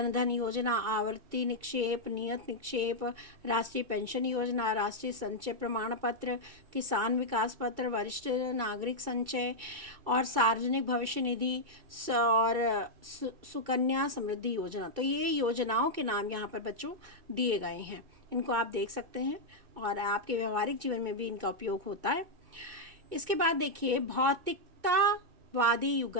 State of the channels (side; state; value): left; late; 2.3 ms